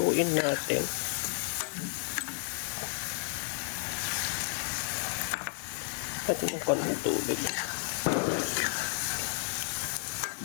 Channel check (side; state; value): right; silent; digital silence